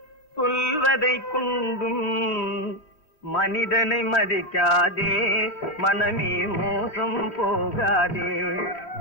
சொல்வதை கொண்டும் மனிதனை மதிக்காதே, மனமே மோசம் போகாதே.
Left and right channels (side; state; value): right; late; 3.2 ms